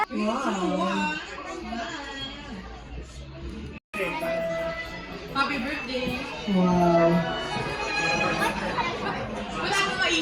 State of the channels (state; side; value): identical; both; correlation 1.00